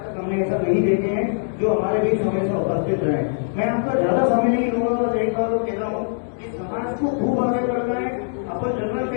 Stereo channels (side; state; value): right; silent; digital silence